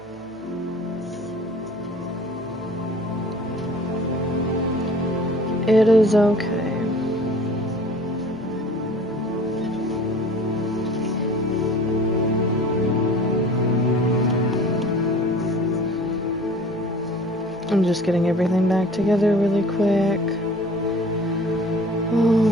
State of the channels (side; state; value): both; normal; correlation 0.46